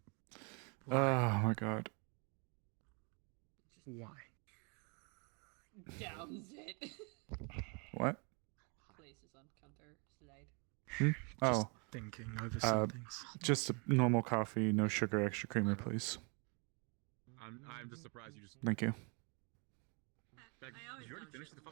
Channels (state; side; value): quieter; left; 34.5 dB